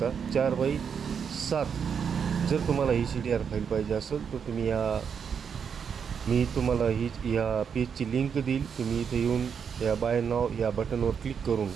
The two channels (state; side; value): quieter; left; 6.9 dB